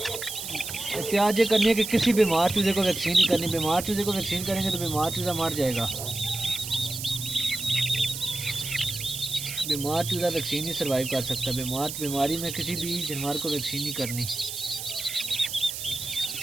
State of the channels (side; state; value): right; noise; hiss, 7 dB below the sound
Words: एहतियात ये करनी है कि किसी बीमार चूज़े को वैक्सीन नहीं करनी। बीमार चूज़े को वैक्सीन करेंगे तो बीमार चूज़ा मर जाएगा। बीमार चूज़ा वैक्सीन नहीं सर्वाइव कर सकता। बीमारी में किसी भी जानवर को वैक्सीन नहीं करनी।